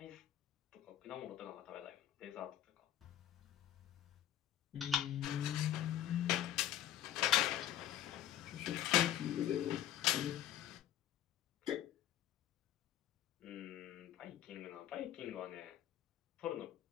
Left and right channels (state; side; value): quieter; right; 11.0 dB